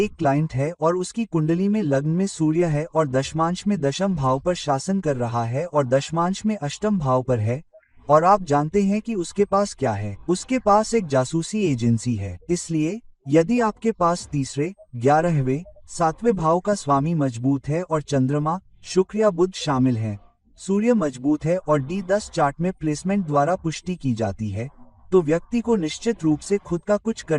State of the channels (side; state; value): both; identical; correlation 1.00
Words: क्लाइंट है और उसकी कुंडली में लग्न में सूर्य है और दशमांश में दशम भाव पर शासन कर रहा है और दशमांश में अष्टम भाव पर है, और आप जानते हैं कि उसके पास क्या है? उसके पास एक जासूसी एजेंसी है। इसलिए यदि आपके पास तीसरे, 11वें, 7वें भाव का स्वामी मजबूत है और चंद्रमा, शुक्र या बुध शामिल हैं, सूर्य मजबूत है और D10 चार्ट में प्लेसमेंट द्वारा पुष्टि की जाती है, तो व्यक्ति को निश्चित रूप से खुद का कुछ